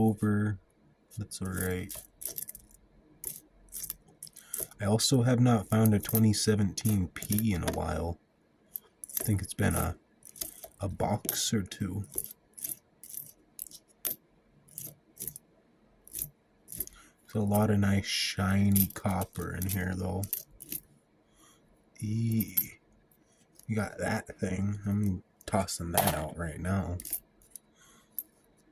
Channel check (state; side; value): identical; both; correlation 1.00